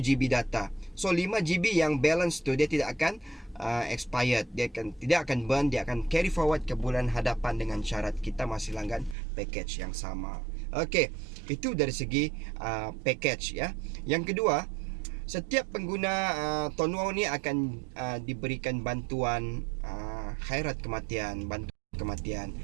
GB data. So 5 GB yang balance tu dia tidak akan expired, tidak akan burn, dia akan carry forward ke bulan hadapan dengan syarat kita masih langgan package yang sama. Okey, itu dari segi package ya. Yang kedua, setiap pengguna Ton Wow ni akan diberikan bantuan khairat kematian, bantuan kematian.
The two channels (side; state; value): left; drops out; at 9.2 s